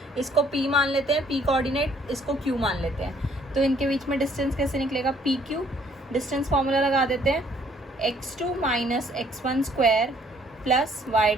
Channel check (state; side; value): normal; both; correlation 0.63